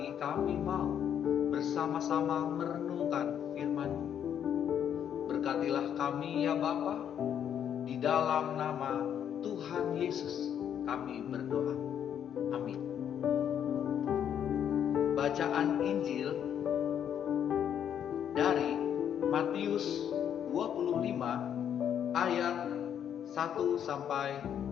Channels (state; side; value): quieter; right; 9.1 dB